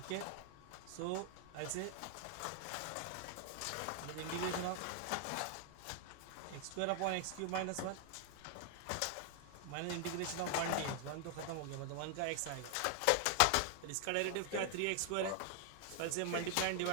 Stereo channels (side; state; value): both; different; correlation 0.00